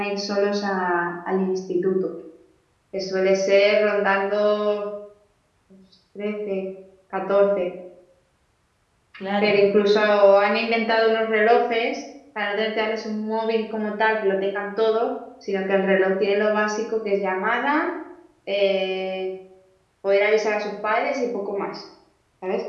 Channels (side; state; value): both; identical; correlation 1.00